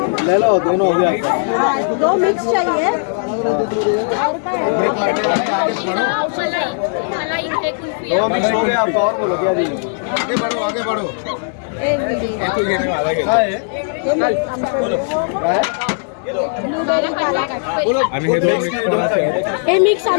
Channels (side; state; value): right; silent; digital silence